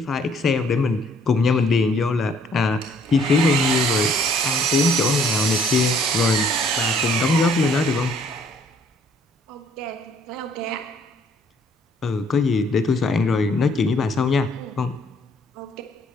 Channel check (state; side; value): normal; both; correlation 0.62